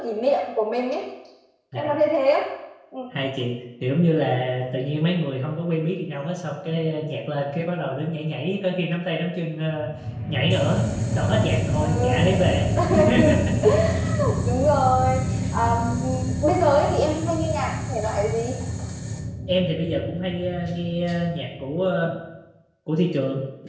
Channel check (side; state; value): both; identical; correlation 1.00